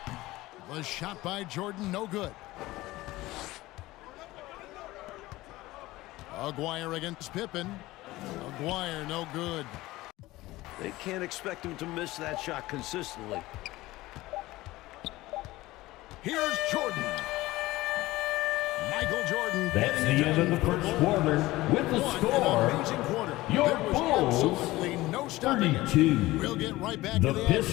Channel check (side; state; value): right; quieter; 18.4 dB